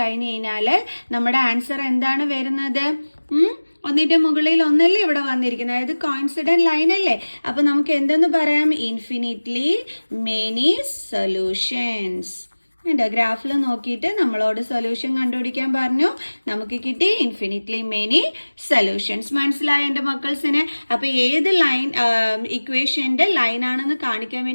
കഴിഞ്ഞാൽ നമ്മുടെ ആൻസർ എന്താണ് വരുന്നത്? ഒന്നിൻ്റെ മുകളിൽ ഒന്നല്ലേ ഇവിടെ വന്നിരിക്കുന്നത്, അതായത് കോയിൻസിഡന്റ് ലൈൻ അല്ലേ? അപ്പൊ നമുക്ക് എന്തെന്ന് പറയാം? Infinitely many solutions. എൻ്റെ ഗ്രാഫിൽ നോക്കിയിട്ട് നമ്മളോട് സൊല്യൂഷൻ കണ്ടുപിടിക്കാൻ പറഞ്ഞു, നമുക്ക് കിട്ടി ഇൻഫിനിറ്റ്ലി മെനി സൊല്യൂഷൻസ്. മനസ്സിലായ എൻ്റെ മക്കൾസിന്? അപ്പോൾ ഏത് ലൈൻ ഇക്വേഷൻ്റെ ലൈനാണെന്ന് കാണിക്കാൻ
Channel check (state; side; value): inverted; both; correlation -1.00